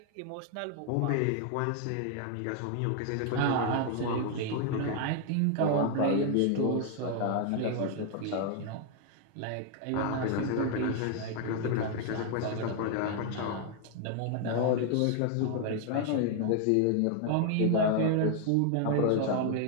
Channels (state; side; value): different; both; correlation 0.00